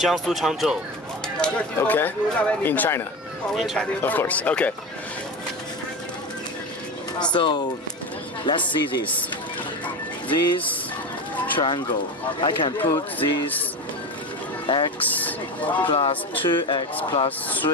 Changzhou Okay. In China. in China. Of course. Okay. So let's see this. This triangle. I can put this x plus 2x plus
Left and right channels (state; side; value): normal; both; correlation 0.24